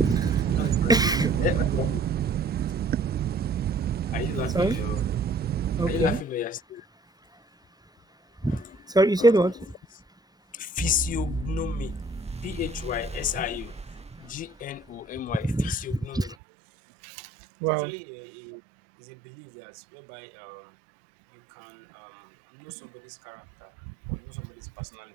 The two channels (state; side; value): drops out; left; at 16.4 s